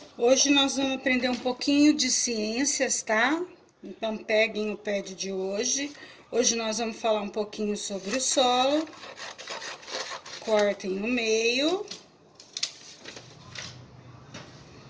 Hoje nós vamos aprender um pouquinho de ciências, tá? Então, peguem o pad de hoje. Hoje nós vamos falar um pouquinho sobre o solo. Cortem no meio.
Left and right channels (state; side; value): identical; both; correlation 1.00